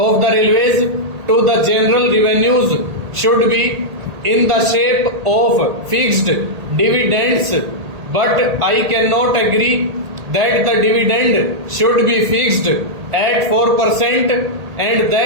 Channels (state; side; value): late; left; 1.8 ms